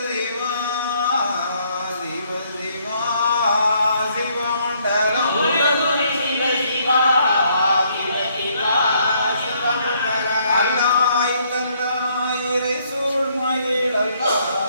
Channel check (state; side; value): inverted; both; correlation -0.68